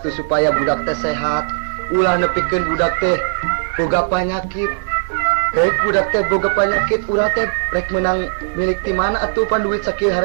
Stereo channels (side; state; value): left; silent; digital silence